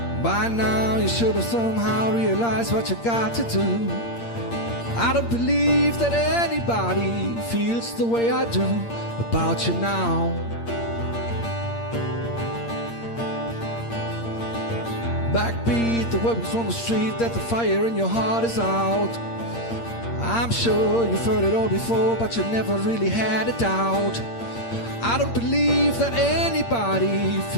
By now you should have somehow realized what you got to do. I don't believe that anybody feels the way I do about you now. Backbeat the weapons on the street, that the fire in your heart is out. I'm sure you've heard it all before, but you never really had a doubt. I don't believe that anybody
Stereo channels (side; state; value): right; late; 8.6 ms